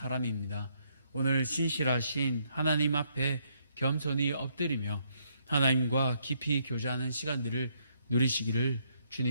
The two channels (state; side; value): inverted; both; correlation -0.73